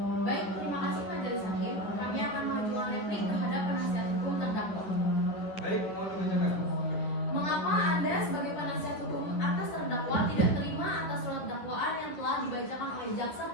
Baik, terima kasih Majelis Hakim. Kami akan mengajukan replik terhadap penasihat hukum terdakwa. Baik, mohon dibacakan. Mengapa Anda sebagai penasihat hukum atas terdakwa tidak terima atas surat dakwaan yang telah dibacakan oleh jaksa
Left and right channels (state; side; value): late; right; 9.9 ms